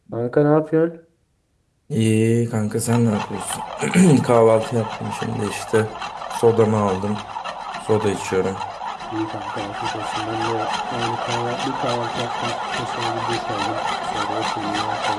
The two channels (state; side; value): identical; both; correlation 1.00